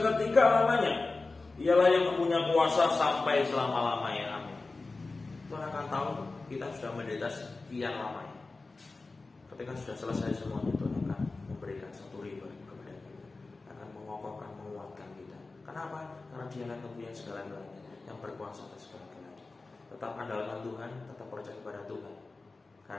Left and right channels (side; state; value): right; quieter; 3.6 dB